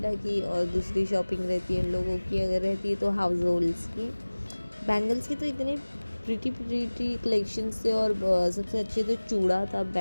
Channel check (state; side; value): inverted; both; correlation -1.00